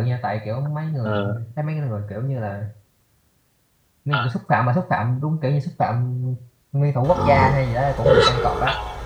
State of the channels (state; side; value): identical; both; correlation 1.00